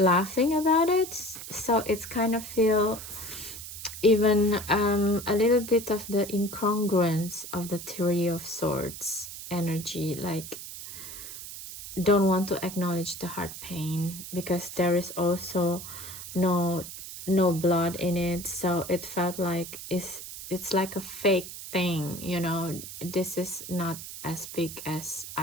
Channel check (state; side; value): noise; right; hiss, 11 dB below the sound